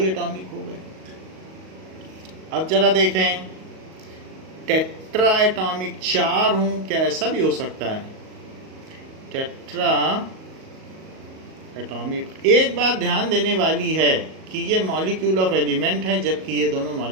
एटॉमिक हो गए। अब जरा देखें, टेट्रा एटॉमिक, 4 हूँ, क्या ऐसा भी हो सकता है? Tetra atomic. एक बात ध्यान देने वाली है कि ये मॉलिक्यूल ऑफ एलिमेंट है, जबकि ये दोनों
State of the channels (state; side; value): late; left; 38 ms